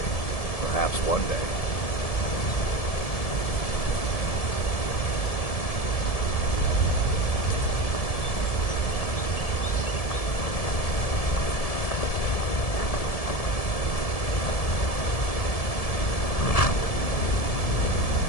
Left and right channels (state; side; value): late; right; 1.7 ms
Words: Perhaps one day.